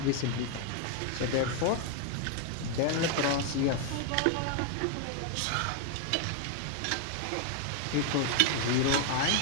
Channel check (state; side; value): different; both; correlation 0.00